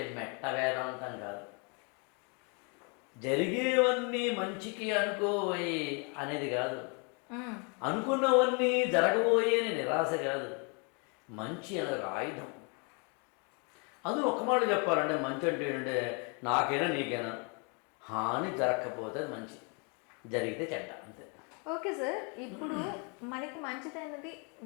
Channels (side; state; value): right; quieter; 34.9 dB